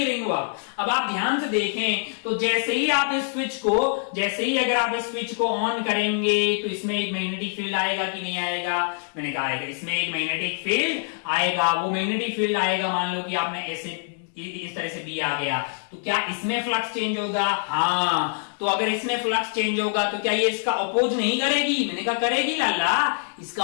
रिंग? अब आप ध्यान से देखें तो जैसे ही आप इस स्विच को, जैसे ही अगर आप इस स्विच को ऑन करेंगे तो इसमें एक मैग्नेटिक फील्ड आएगा कि नहीं आएगा? मैंने कहा आएगा, इसमें एक मैग्नेटिक फील्ड आएगा। वो मैग्नेटिक फील्ड आएगा, मान लो कि आपने ऐसे इस तरह से बी आ गया, तो क्या इसमें फ्लक्स चेंज होगा? हाँ, तो अगर इसमें फ्लक्स चेंज होगा तो क्या ये इसका अपोज नहीं करेगी? मैंने कहा करेगी लाला, इसका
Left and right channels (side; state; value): right; silent; digital silence